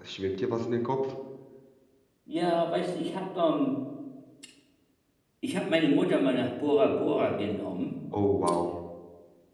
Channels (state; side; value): identical; both; correlation 1.00